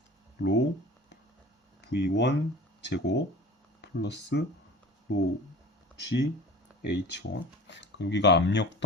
로 V1 제곱 플러스 로 G H1. 여기가 압력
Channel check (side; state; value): both; normal; correlation 0.39